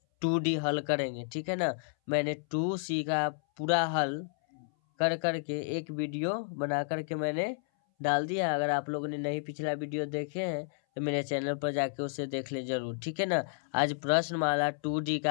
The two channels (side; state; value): right; silent; 57 dB below the other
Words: 2D हल करेंगे, ठीक है ना। मैंने 2C का पूरा हल कर करके एक वीडियो बना करके मैंने डाल दिया। अगर आप लोगों ने नहीं पिछला वीडियो देखे हैं तो मेरे चैनल पर जाके उसे देख ले जरूर, ठीक है ना। आज प्रश्नमाला 2D